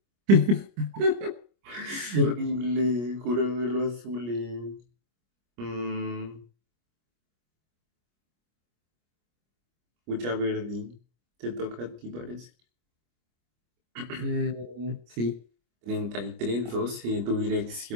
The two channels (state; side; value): late; left; 25 ms